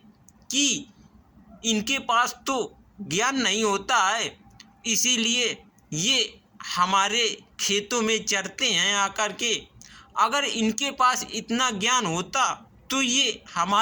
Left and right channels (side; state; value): both; identical; correlation 1.00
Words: कि इनके पास तो ज्ञान नहीं होता है, इसीलिए ये हमारे खेतों में चरते हैं आकर के। अगर इनके पास इतना ज्ञान होता तो ये